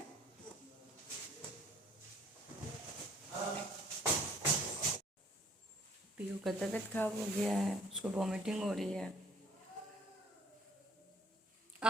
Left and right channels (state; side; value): normal; both; correlation 0.59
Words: पीयू का तबीयत खराब हो गया है, उसको वॉमिटिंग हो रही है।